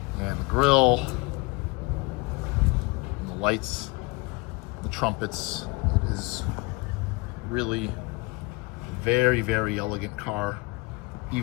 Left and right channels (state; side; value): quieter; right; 25.7 dB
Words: and the grille and the lights, the trumpets. It is really a very, very elegant car.